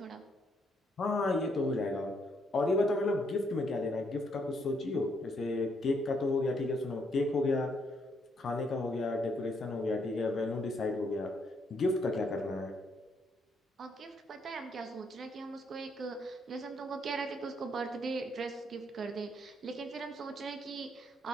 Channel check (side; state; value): both; normal; correlation 0.73